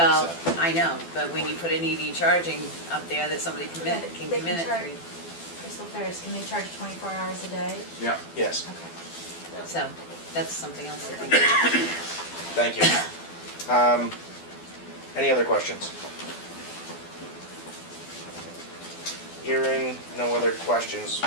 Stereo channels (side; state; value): right; late; 12 ms